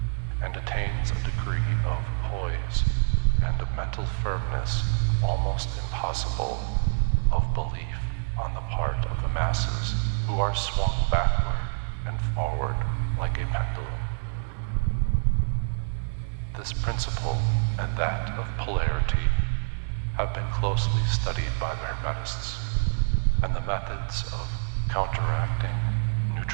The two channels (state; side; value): silent; left; 60 dB below the other